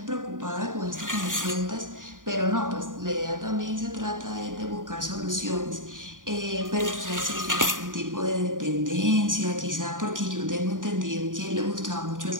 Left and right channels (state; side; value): late; left; 0.88 ms